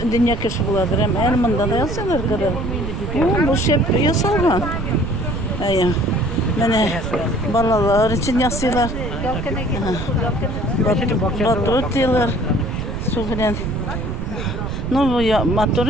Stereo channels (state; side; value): noise; right; rumble, 5 dB below the sound